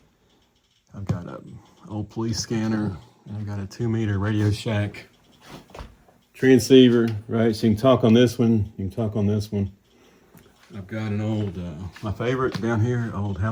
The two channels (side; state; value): both; identical; correlation 1.00